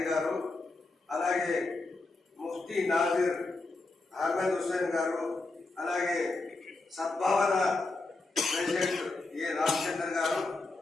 గారు, అలాగే ముఫ్తీ నాజిర్ అహ్మద్ హుస్సేన్ గారు, అలాగే సద్భావన ప్రెసిడెంట్ ఏ రామచంద్ర గారు.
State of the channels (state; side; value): quieter; right; 3.3 dB